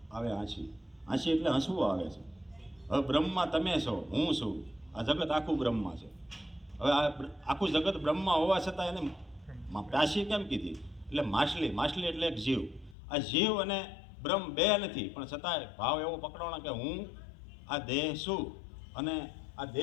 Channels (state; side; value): drops out; right; at 13.0 s